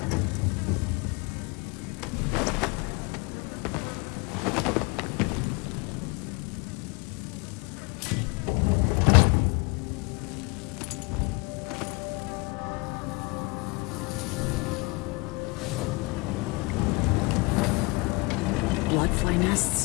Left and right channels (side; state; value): right; quieter; 27.2 dB